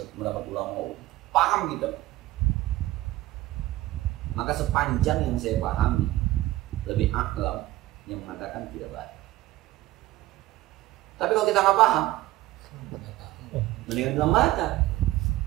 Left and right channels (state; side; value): quieter; left; 16.8 dB